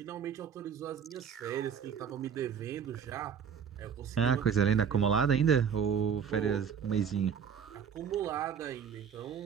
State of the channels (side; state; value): left; quieter; 7.3 dB